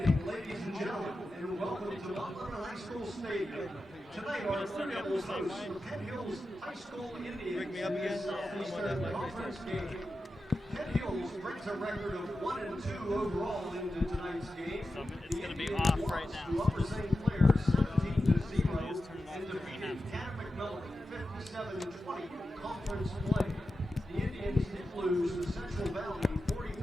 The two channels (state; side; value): normal; both; correlation 0.92